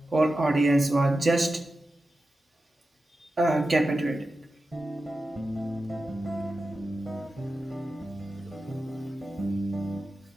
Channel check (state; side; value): normal; both; correlation 0.92